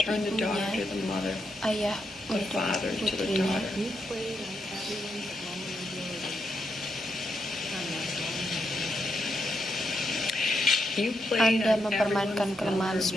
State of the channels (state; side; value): normal; both; correlation 0.81